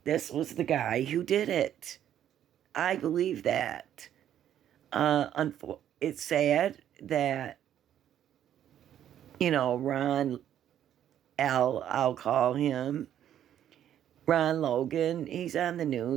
this was the guy who did it. I believe that. It's sad that, I'll call him Ron Logan. He's on the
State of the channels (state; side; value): quieter; left; 10.6 dB